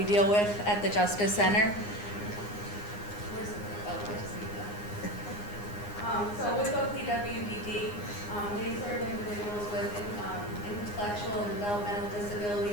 deal with at the Justice Center. So with OPWDD, they serve individuals with intellectual and developmental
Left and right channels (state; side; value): late; right; 9.7 ms